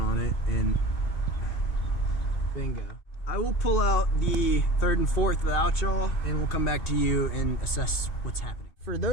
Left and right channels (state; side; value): late; right; 2.7 ms